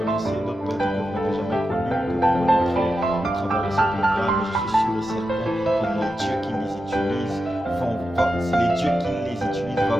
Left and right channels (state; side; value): normal; both; correlation 0.90